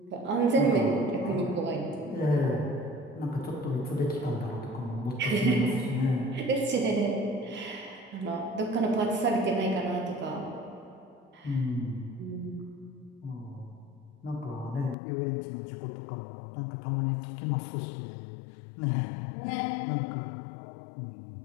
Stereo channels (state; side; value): drops out; right; at 15.0 s